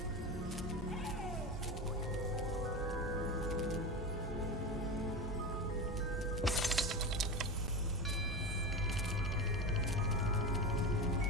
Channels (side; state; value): both; normal; correlation 0.23